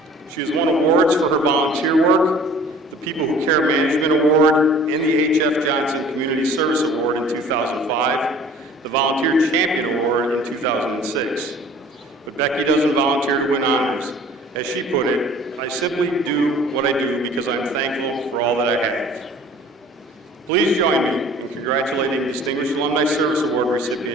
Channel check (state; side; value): normal; both; correlation 0.49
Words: She has won awards for her volunteer work, the People Who Care Management Award, and the H.F. Johnson Community Service Award in 2005, the Volunteer Champion Award in 2006. But Becky doesn't volunteer to win honors. As she put it, I simply do what I do because I'm thankful for all that I have. Please join me in congratulating Distinguished Alumni Service Award